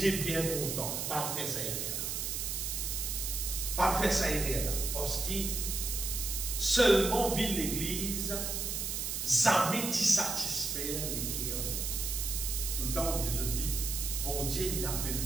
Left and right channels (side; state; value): right; noise; hiss, 2 dB below the sound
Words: bien content, pas faire ça là. Pas faire ça là, parce que seulement vit l'église, jamais t'y satisfaire les cœurs de Dieu. Tout le temps où Jésus dit, bon Dieu, il appelle